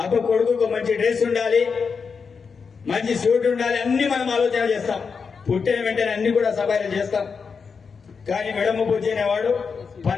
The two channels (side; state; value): right; quieter; 5.5 dB